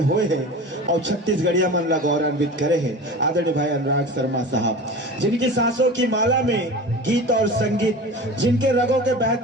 हुए हैं और छत्तीसगढ़िया मन ला गौरवान्वित करे हैं आदरणीय भाई अनुराग शर्मा साहब, जिनकी सांसों की माला में गीत और संगीत, जिनके रगों के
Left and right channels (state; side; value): normal; both; correlation 0.34